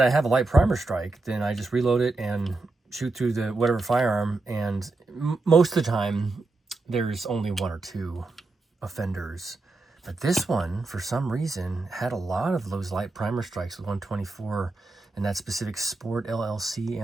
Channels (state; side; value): quieter; left; 3.3 dB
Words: I have a light primer strike, then I just reload it and shoot through the whatever firearm, and most of the time there's only 1 or 2 offenders. But this one, for some reason, had a lot of those light primer strikes with 124 and that specific Sport LLC